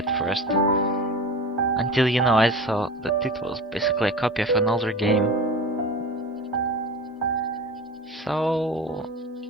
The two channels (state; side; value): normal; both; correlation 0.32